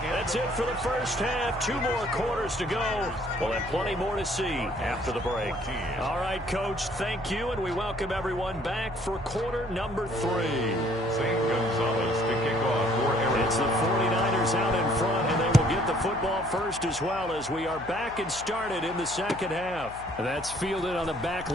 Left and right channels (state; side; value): noise; left; hum, 17 dB below the sound